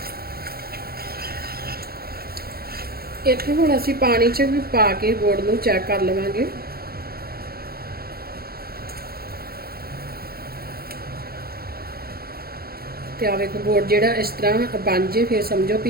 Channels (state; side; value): late; left; 0.44 ms